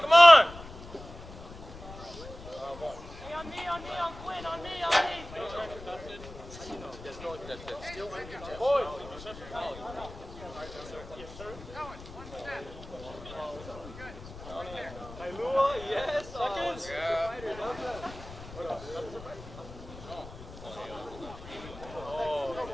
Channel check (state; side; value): noise; left; rumble, 15 dB below the sound